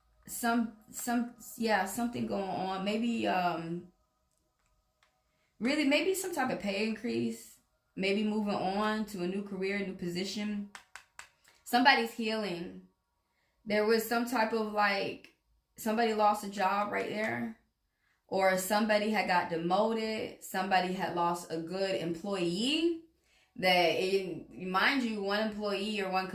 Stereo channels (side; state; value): both; identical; correlation 1.00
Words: Something going on. Maybe really maybe some type of pay increase. Maybe moving on to a new career, new position. Somebody's healing. There was some type of like somebody lost a job right there, or somebody had got demoted. Somebody had lost a good employee. Mind you, one employee or one